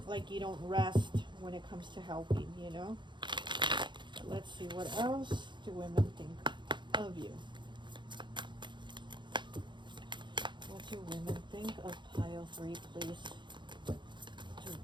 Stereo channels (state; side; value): late; left; 0.23 ms